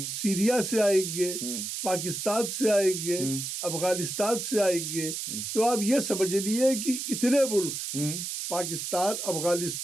सीरिया से आएंगे, पाकिस्तान से आएंगे, अफगानिस्तान से आएंगे। तो आप ये समझ लिए कि इतने मुल्क, Pakistan,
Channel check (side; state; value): right; noise; hiss, 4 dB below the sound